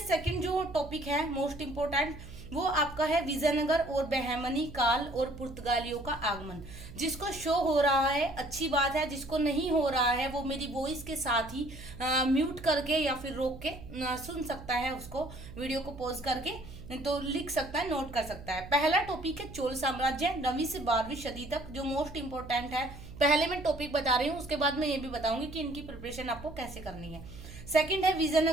जो टॉपिक है मोस्ट इम्पोर्टेंट, वो आपका है विजयनगर और बहमनी काल और पुर्तगालियों का आगमन। जिसको शो हो रहा है अच्छी बात है, जिसको नहीं हो रहा है वो मेरी वॉइस के साथ ही म्यूट करके या फिर रोक के सुन सकता है, उसको वीडियो को पॉज करके तो लिख सकता है, नोट कर सकता है। पहला टॉपिक है चोल साम्राज्य 9वीं से 12वीं सदी तक, जो मोस्ट इंपोर्टेंट है। पहले मैं टॉपिक बता रही हूँ, उसके बाद मैं ये भी बताऊंगी कि इनकी प्रिपरेशन आपको कैसे करनी है। सेकंड है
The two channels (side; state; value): right; noise; hum, 14 dB below the sound